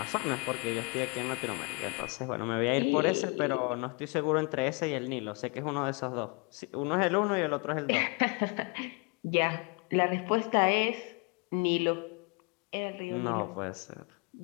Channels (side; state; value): right; quieter; 32.7 dB